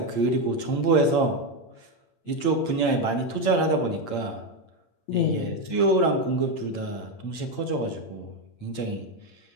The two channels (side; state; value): right; late; 8.8 ms